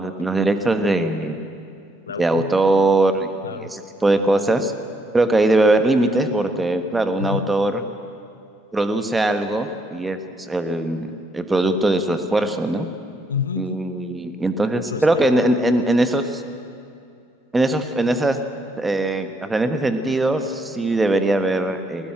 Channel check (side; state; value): both; normal; correlation 0.74